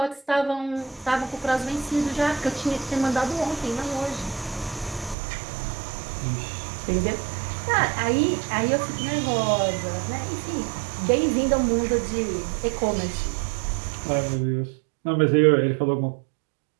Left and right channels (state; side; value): drops out; left; at 5.2 s